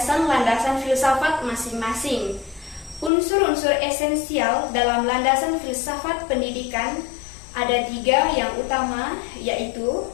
filsafat masing-masing. Unsur-unsur esensial dalam landasan filsafat pendidikan ada 3 yang utama, yaitu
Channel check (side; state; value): right; drops out; at 3.1 s